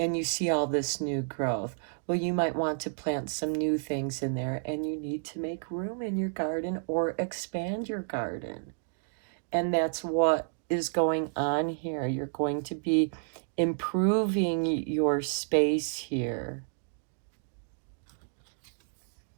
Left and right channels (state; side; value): silent; left; digital silence